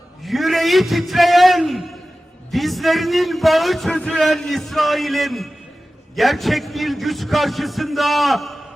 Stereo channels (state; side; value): normal; both; correlation 0.95